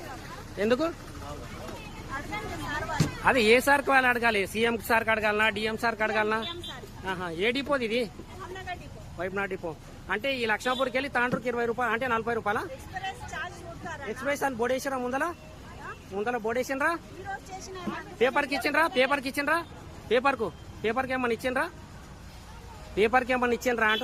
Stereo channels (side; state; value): both; identical; correlation 1.00